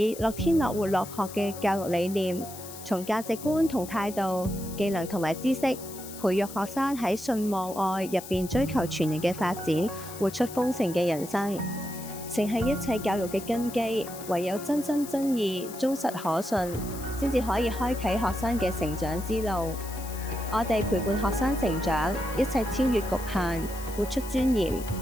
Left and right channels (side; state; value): left; noise; hiss, 13 dB below the sound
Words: 樂天樂活樂學嘅教育理念，從價值觀同態度、技能同埋知識，培育學生喺信望愛入邊追求全人嘅發展，活出豐盛嘅人生，誠係一切教育嘅根基。唯有真心真意、忠實可信，先至可以開啟學生嘅成長之路。我哋陪伴學生成長，一齊超越局限，活出尊嚴，